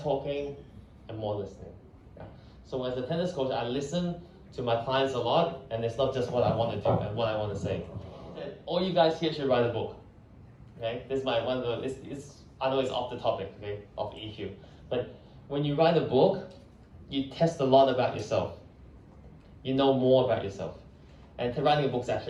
talking and more listening. Yeah. So as a tennis coach, I listen to my clients a lot, and it's not just what I want to do and what I want to say. All you guys here should write a book. Okay, this is I know it's off the topic, okay, of EQ, but when you write a book, you test a lot about yourself. You know more about yourself, and writing a book is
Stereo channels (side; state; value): both; identical; correlation 1.00